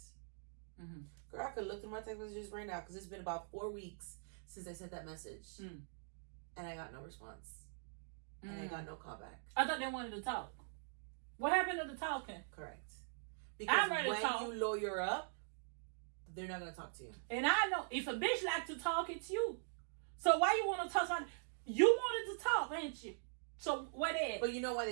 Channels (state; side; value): silent; left; digital silence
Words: Girl, I could look through my text messages right now because it's been about 4 weeks since I sent that message. And I got no response. And I got no callback. I thought they wanted to talk. What happened to the talking? Correct. Because I'm ready to talk. When you lawyer up, they're not going to talk to you. And I know if a bitch like to talk, it's you. So why you want to talk? You wanted to talk, ain't you? So what is? But you know why